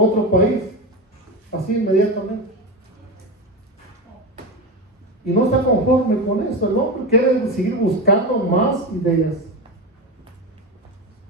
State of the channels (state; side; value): normal; both; correlation 0.19